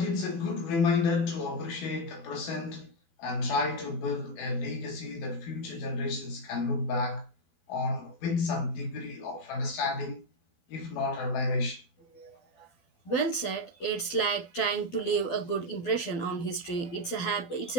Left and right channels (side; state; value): right; late; 12 ms